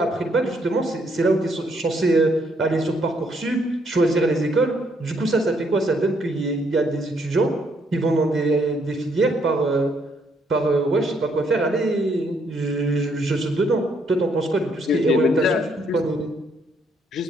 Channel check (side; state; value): both; normal; correlation 0.71